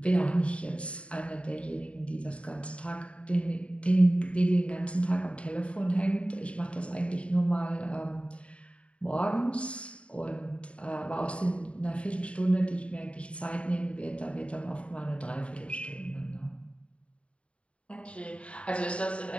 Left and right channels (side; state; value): right; late; 0.060 ms